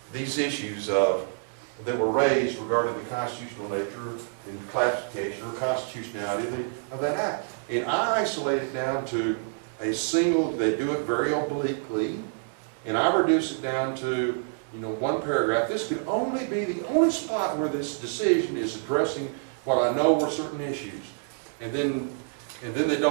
these issues that were raised regarding the constitutional nature and classification or constitutionality of that act? And I isolate it down to a single, they do it very obliquely, and I reduce it down to, one paragraph. This could only be the only spot where this decision is addressing what I know were certain issues. And then they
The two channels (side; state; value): left; silent; 60 dB below the other